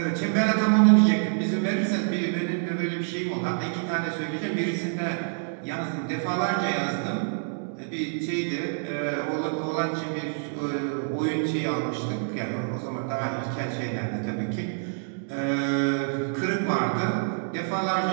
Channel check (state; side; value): silent; left; digital silence